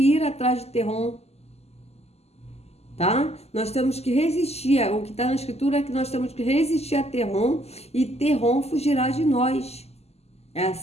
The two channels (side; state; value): right; late; 0.30 ms